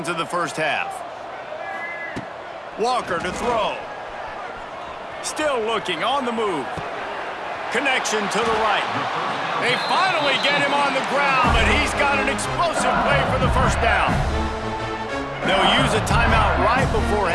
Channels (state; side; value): identical; both; correlation 1.00